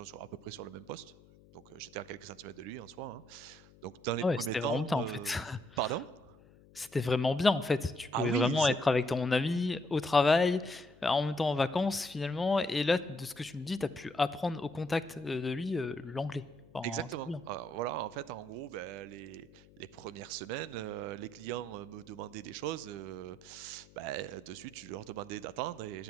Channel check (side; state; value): left; noise; hum, 25 dB below the sound